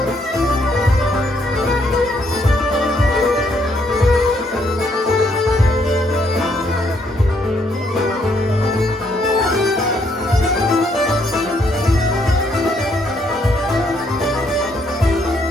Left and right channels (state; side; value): normal; both; correlation 0.71